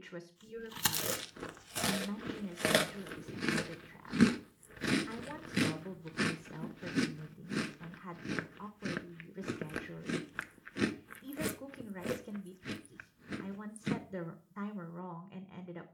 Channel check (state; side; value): identical; both; correlation 1.00